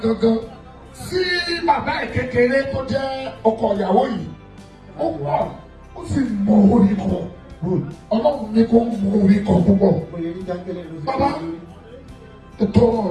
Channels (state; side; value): identical; both; correlation 1.00